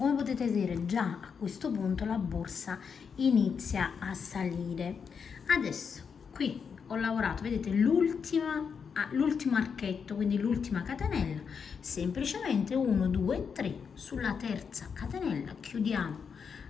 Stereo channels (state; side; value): quieter; right; 6.3 dB